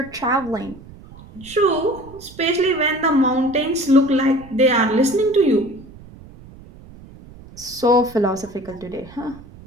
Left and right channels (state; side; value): noise; right; rumble, 20 dB below the sound